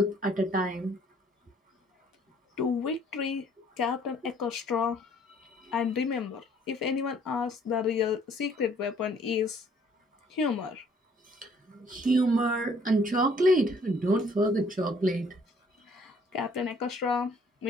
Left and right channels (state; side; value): normal; both; correlation 0.60